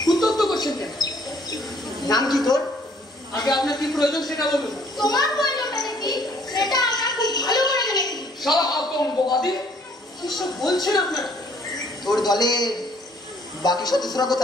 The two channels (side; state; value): both; normal; correlation 0.61